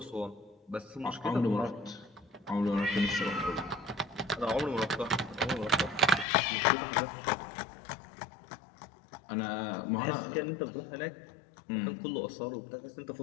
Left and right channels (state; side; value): drops out; right; at 6.2 s